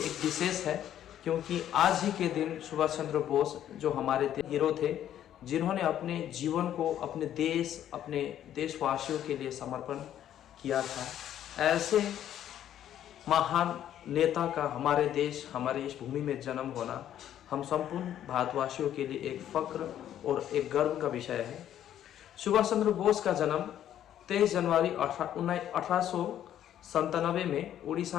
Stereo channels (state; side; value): quieter; right; 11.0 dB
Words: विशेष है, क्योंकि आज ही के दिन सुभाष चंद्र बोस जो हमारे हीरो थे, जिन्होंने अपने जीवन को अपने देशवासियों के लिए समर्पण किया था। ऐसे महान नेता का हमारे देश, हमारे इस भूमि में जन्म होना हम संपूर्ण भारतवासियों के लिए एक फक्र और एक गर्व का विषय है। सुभाष चंद्र बोस का जन्म 23 जनवरी 1897 में